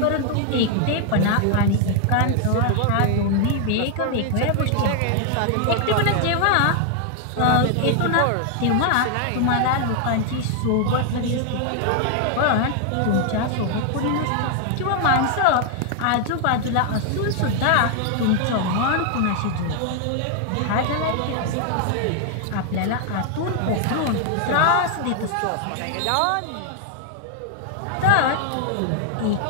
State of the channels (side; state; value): both; different; correlation 0.00